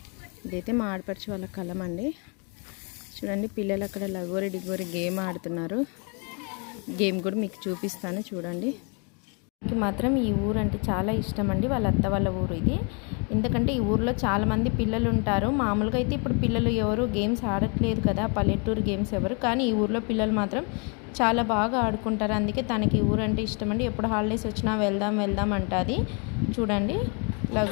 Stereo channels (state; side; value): quieter; right; 35.2 dB